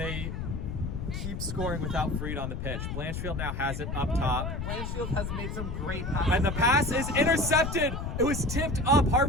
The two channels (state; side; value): noise; left; rumble, 4 dB below the sound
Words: keep scoring without Freed on the pitch? Blanchfield now has it up top. Blanchfield has made some great passes. And the pass is intercepted. It was tipped up.